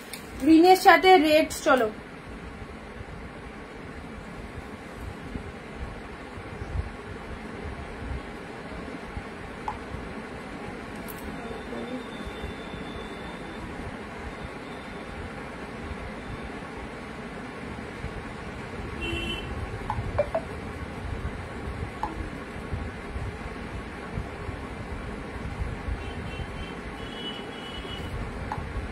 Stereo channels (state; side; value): identical; both; correlation 1.00